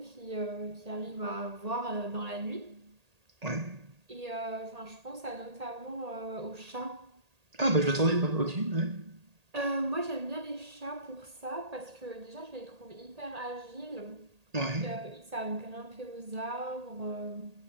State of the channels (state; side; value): late; left; 1.8 ms